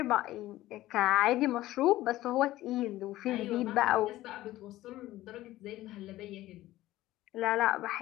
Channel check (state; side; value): quieter; right; 15.8 dB